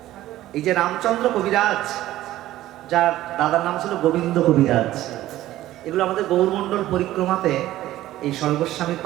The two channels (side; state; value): left; quieter; 14.7 dB